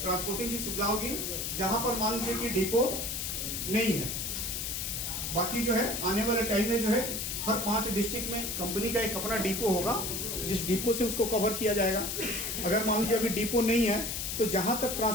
ट्रांसपोर्टिंग की सुविधा होगी, जहां पर मान लीजिए कि डिपो नहीं है। बाकी जो है आने वाले टाइम में जो है हर 5 डिस्ट्रिक्ट में कंपनी का एक अपना डिपो होगा, जिस डिपो से उसको कवर किया जाएगा। अगर मान लीजिए अभी डिपो नहीं है तो जहां तक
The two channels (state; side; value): noise; left; hiss, 3 dB below the sound